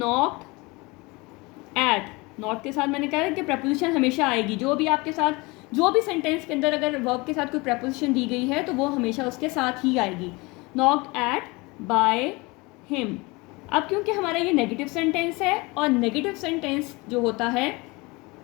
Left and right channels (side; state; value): right; quieter; 24.9 dB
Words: eight, not के साथ मैंने कहा कि प्रपोजिशन हमेशा आएगी, जो भी आपके साथ, जो भी सेंटेंस के अंदर अगर वर्ब के साथ कोई प्रपोजिशन दी गई है तो वो हमेशा उसके साथ ही आएगी। Knocked eight by him. अब क्योंकि हमारा ये नेगेटिव सेंटेंस है, और नेगेटिव सेंटेंस जो होता है